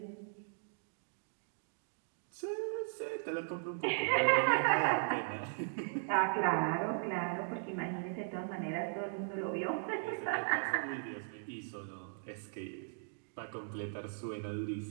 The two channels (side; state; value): left; silent; digital silence